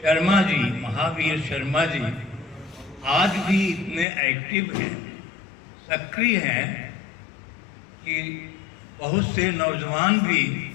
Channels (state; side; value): drops out; right; at 4.0 s